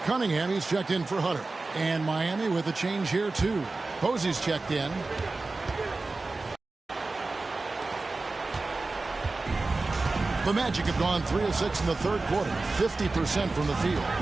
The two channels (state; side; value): quieter; left; 3.5 dB